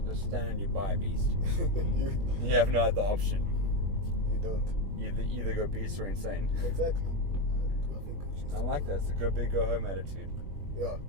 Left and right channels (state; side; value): late; left; 21 ms